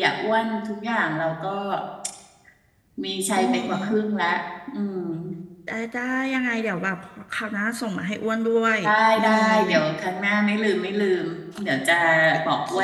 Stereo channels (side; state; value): both; identical; correlation 1.00